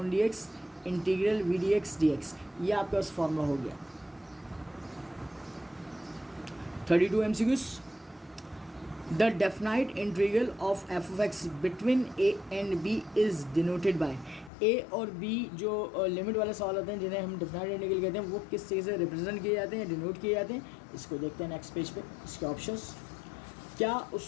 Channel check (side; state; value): right; drops out; at 14.5 s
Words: d x integral v d x D x, ये आपके पास फॉर्मूला हो गया। 32 MCQs, the definite integral of f of x between a and b is denoted by, a और b जो limit वाले सवाल होते हैं जिन्हें हम डेफिनाइट इंटीग्रल कहते हैं, वो किस चीज़ से रिप्रेजेंट किए जाते हैं, डिनोट किए जाते हैं, इसको देखते हैं नेक्स्ट पेज पे। इसके ऑप्शंस, क्या